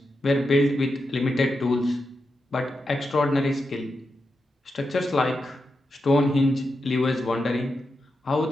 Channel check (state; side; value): normal; both; correlation 0.87